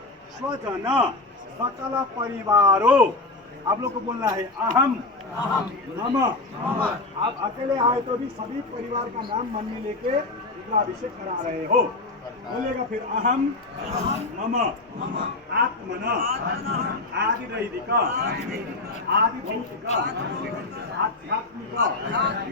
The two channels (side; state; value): right; quieter; 3.2 dB